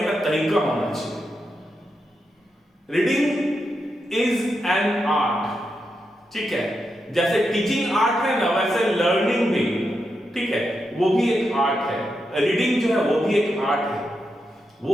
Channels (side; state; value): both; normal; correlation 0.85